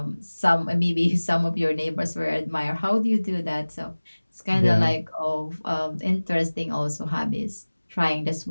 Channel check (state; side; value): inverted; both; correlation -1.00